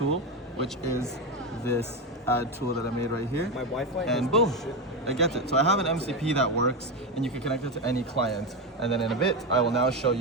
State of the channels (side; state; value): both; normal; correlation 0.13